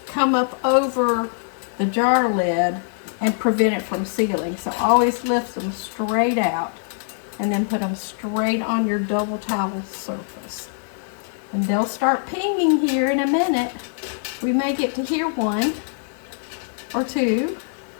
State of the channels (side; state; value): right; silent; digital silence